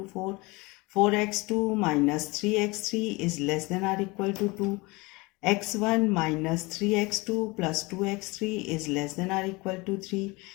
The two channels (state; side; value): quieter; right; 24.6 dB